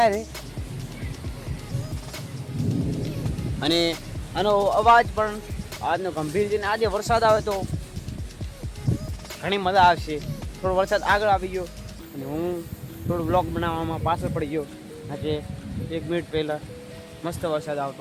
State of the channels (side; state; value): both; identical; correlation 1.00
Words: છે. અને આનો અવાજ પણ આજનો ગંભીર છે. આજે વરસાદ આવે તો ઘણી મજા આવશે. થોડો વરસાદ આગળ આવી ગયો અને હું થોડું બ્લોગ બનાવવામાં પાછળ પડી ગયો. આજે 1 મિનિટ પહેલાં મસ્ત વરસાદ